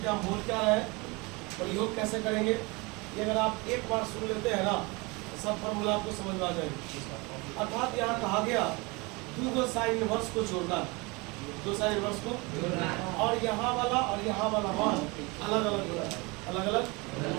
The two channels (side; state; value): left; quieter; 26.5 dB